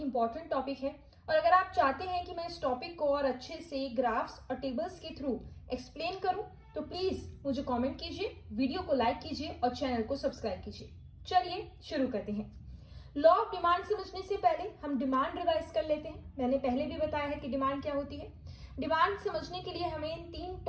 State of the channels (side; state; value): both; identical; correlation 1.00